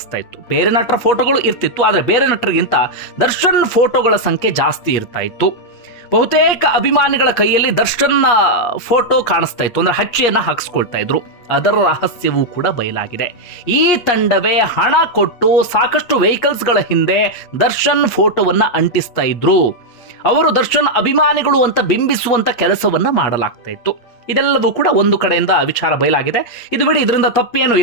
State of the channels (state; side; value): late; right; 8.4 ms